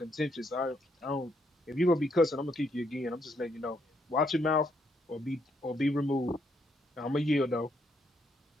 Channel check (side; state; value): both; normal; correlation 0.74